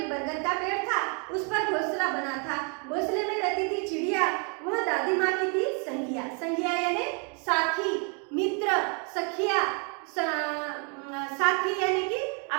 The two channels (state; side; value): quieter; left; 37.7 dB